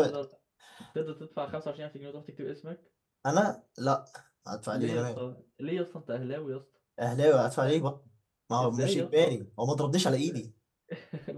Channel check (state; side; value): identical; both; correlation 1.00